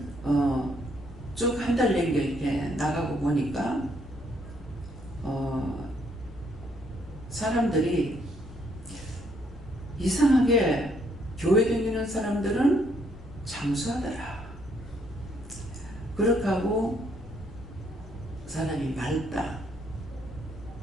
쭉 한 달 내내 이렇게 나가고 보니까 사람들이 이상하게 교회 다니는 사람들은 장수하더라. 그렇게 하고 사람이 맑다.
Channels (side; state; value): both; normal; correlation 0.70